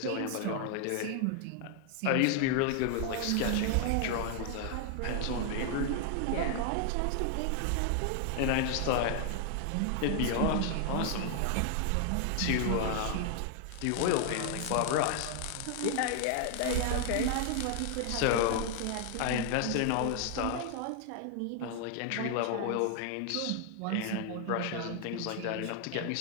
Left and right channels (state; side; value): different; both; correlation 0.00